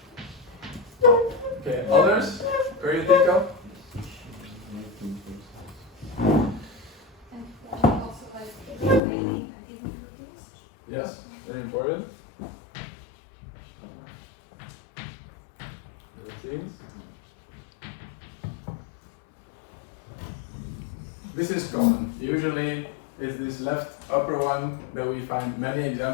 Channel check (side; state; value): right; drops out; at 9.0 s